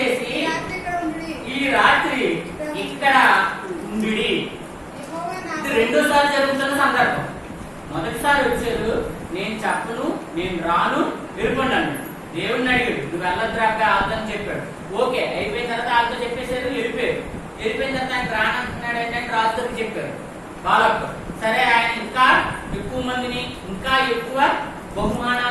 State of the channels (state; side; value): identical; both; correlation 1.00